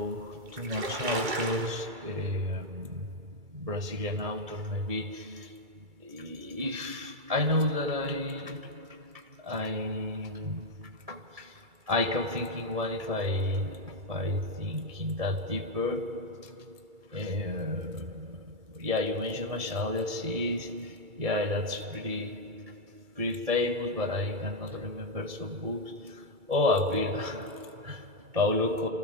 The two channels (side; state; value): left; late; 2.3 ms